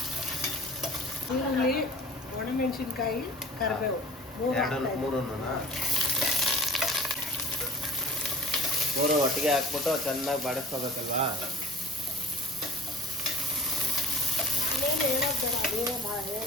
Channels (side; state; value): both; normal; correlation 0.43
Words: ಈರುಳ್ಳಿ, ಒಣಮೆಣಸಿನ್ಕಾಯಿ, ಕರಿಬೇವು ಮೂರು ಒಟ್ಟಿಗೆ ಹಾಕ್ಬಿಟ್ಟು ಚೆನ್ನಾಗಿ ಬಾಡಿಸ್ಕೋಬೇಕಲ್ವಾ?